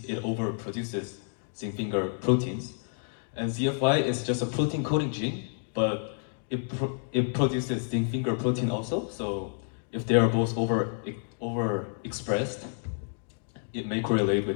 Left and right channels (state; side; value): silent; right; digital silence